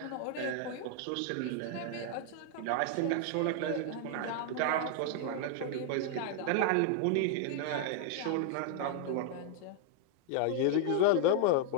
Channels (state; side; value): different; both; correlation 0.00